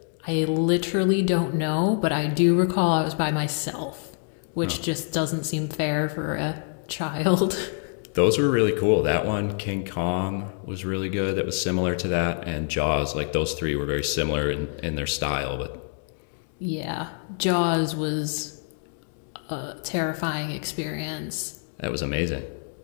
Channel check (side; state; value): right; silent; 61 dB below the other